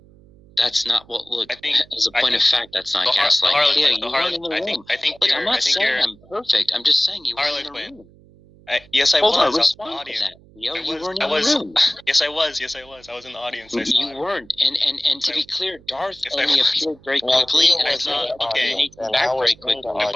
that's not what. Look, as a point of fact, that's not gaslighting. Theo, you weren't in the room. Look, I'm not saying I'm perfect. I'm just saying you weren't in the room. Yes, I was. Hold on, respond to that. Theo, you weren't in the room. Yes, I was. Yes, I was. I was in the audience. You weren't. And to be clear, Darth only appeared very quickly, and I saw he came back very quickly. I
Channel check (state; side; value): noise; right; hum, 26 dB below the sound